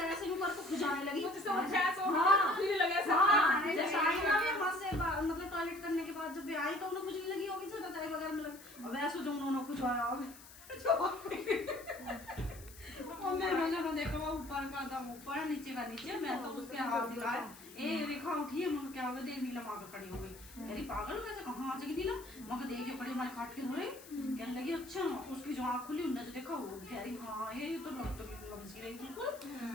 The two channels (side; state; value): left; noise; hiss, 18 dB below the sound